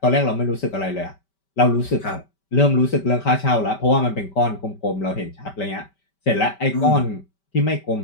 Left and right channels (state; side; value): late; right; 5.2 ms